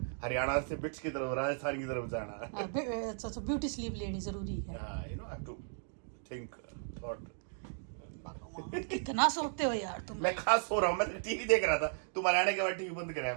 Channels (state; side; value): silent; left; digital silence